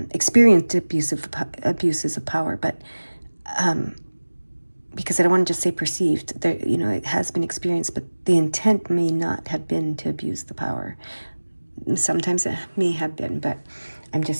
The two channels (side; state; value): both; inverted; correlation -1.00